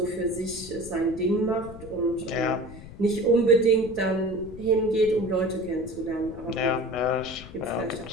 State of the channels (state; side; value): noise; left; rumble, 15 dB below the sound